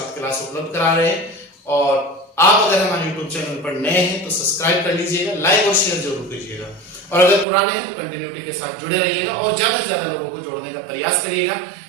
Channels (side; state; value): left; drops out; at 7.5 s